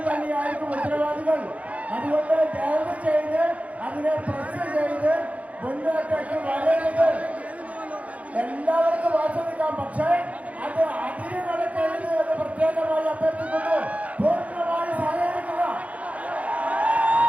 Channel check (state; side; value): late; left; 0.067 ms